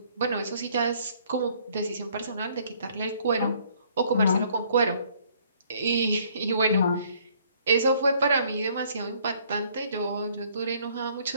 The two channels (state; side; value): inverted; both; correlation -0.62